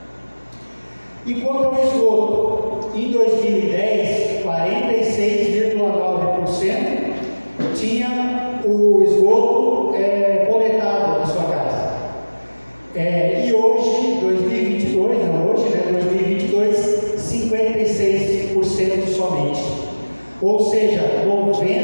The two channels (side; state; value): both; inverted; correlation -1.00